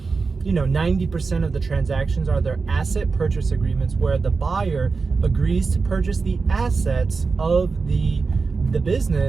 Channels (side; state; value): left; quieter; 4.5 dB